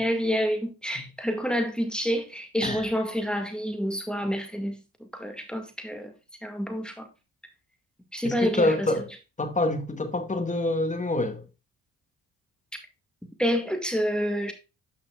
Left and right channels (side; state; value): both; normal; correlation 0.71